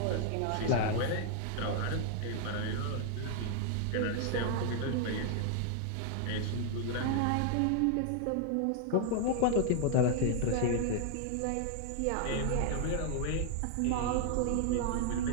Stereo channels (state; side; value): different; both; correlation 0.00